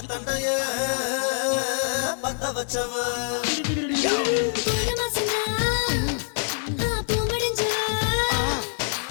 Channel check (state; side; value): silent; right; 62 dB below the other